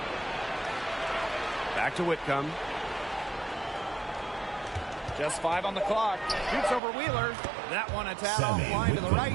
Back to Whitcomb. Just 5 on the clock. Shoots over Wheeler. That one a tad offline to the right,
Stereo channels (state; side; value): drops out; left; at 6.8 s